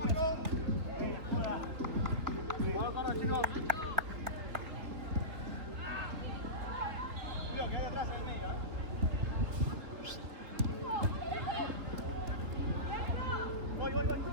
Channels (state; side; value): late; left; 3.2 ms